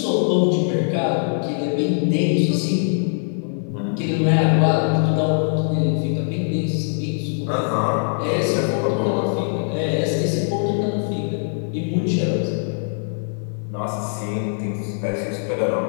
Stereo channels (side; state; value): right; silent; digital silence